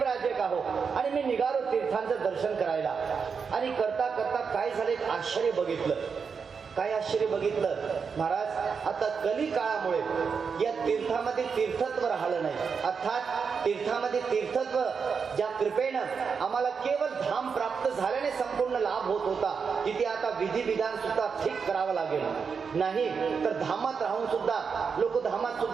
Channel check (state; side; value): quieter; left; 5.8 dB